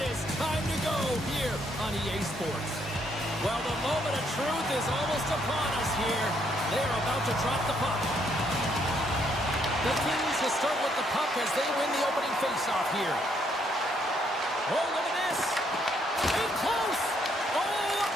is time to go here on EA Sports. Well, the moment of truth is almost upon us here. They're about to drop the puck. The Kings will start with the puck as they win the opening faceoff here. Oh, look at this. In close. Oh, a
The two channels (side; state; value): both; normal; correlation 0.71